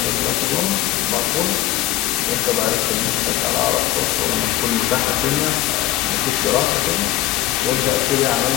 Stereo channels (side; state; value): right; quieter; 14.4 dB